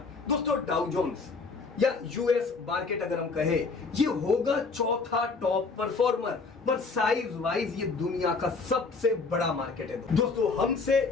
दोस्तों डाउ जोन्स या यूएस मार्केट अगर हम कहे, ये होगा चौथा टॉप परफॉर्मर, पर साइज वाइज ये दुनिया का सबसे बड़ा मार्केट है दोस्तों, हमसे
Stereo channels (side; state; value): right; quieter; 4.3 dB